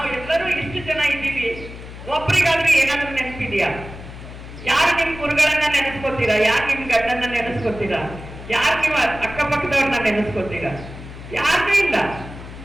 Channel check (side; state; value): left; noise; hum, 13 dB below the sound